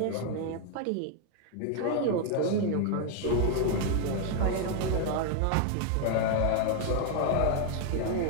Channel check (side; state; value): both; different; correlation 0.00